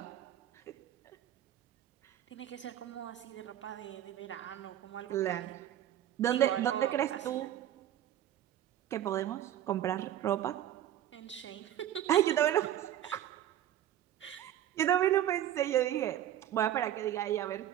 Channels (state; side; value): quieter; left; 11.8 dB